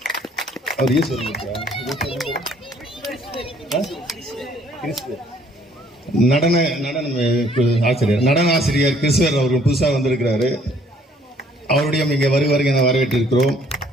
நடன ஆசிரியர் கிறிஸ்துவர் அவர்கள் புதுசாக வந்திருக்கிறாரு. அவருடைய இங்கே வருவார்கள் என வரவேற்றிருக்கிறோம்.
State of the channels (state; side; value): normal; both; correlation 0.62